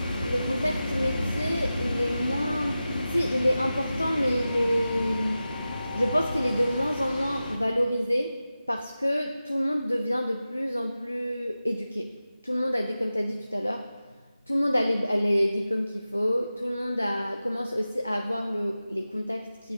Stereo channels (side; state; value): both; inverted; correlation -0.94